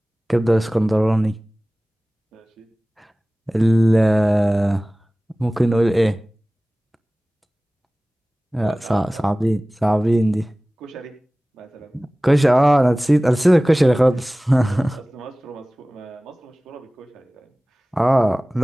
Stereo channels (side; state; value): both; normal; correlation 0.98